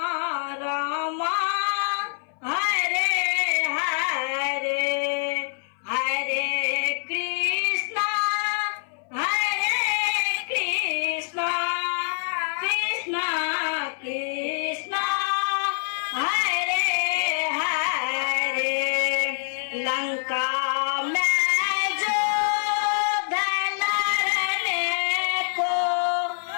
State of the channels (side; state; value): right; silent; 59 dB below the other